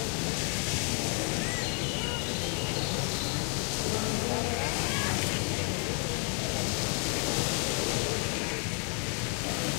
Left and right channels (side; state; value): right; quieter; 39.8 dB